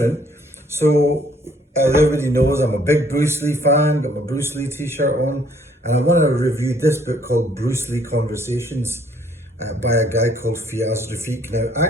So as everybody knows, I'm a big Bruce Lee fan. Got my Bruce Lee T-shirt on, and I want to review this book called Bruce Lee Conversations by a guy called Fiaz Rafiq. Now,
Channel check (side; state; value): both; normal; correlation 0.62